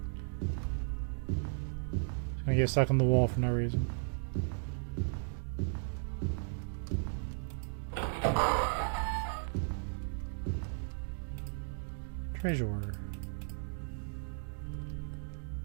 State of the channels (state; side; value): silent; left; 54 dB below the other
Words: It's gonna get stuck on the wall for no reason. Treasure.